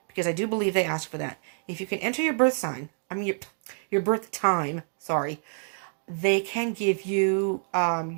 because I do believe they ask for that. If you can enter your birth sign, your birth time, sorry, they can give you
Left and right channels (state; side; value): silent; left; 60 dB below the other